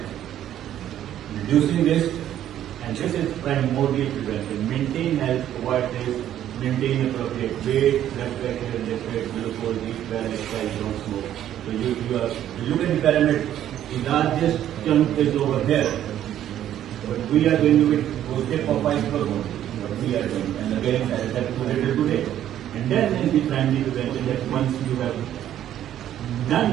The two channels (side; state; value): left; quieter; 11.4 dB